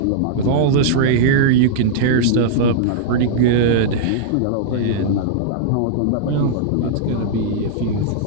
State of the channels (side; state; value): both; different; correlation -0.02